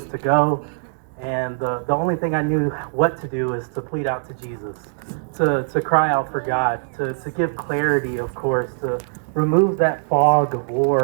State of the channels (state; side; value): silent; left; digital silence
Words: to go. And the only thing I knew what to do is to plead out to Jesus, to cry out for God, to give clarity, of course, to remove that fog of